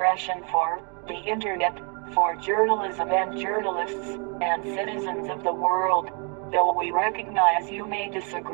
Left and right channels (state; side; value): quieter; left; 36.1 dB